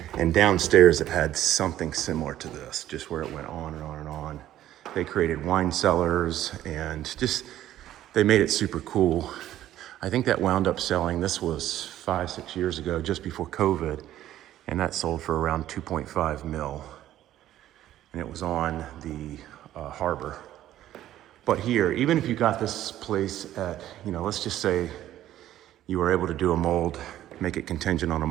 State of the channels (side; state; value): left; quieter; 12.9 dB